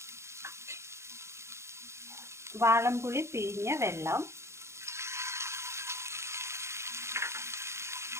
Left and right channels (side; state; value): left; late; 0.13 ms